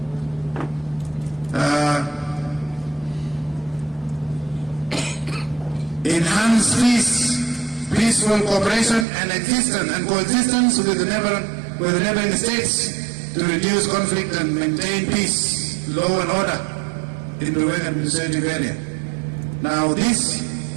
Enhance peace, peaceful cooperation and existence and coexistence with the neighboring states to reduce conflict and maintain peace, law and order in the Ruling administrative area. Now this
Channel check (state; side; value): drops out; left; at 9.1 s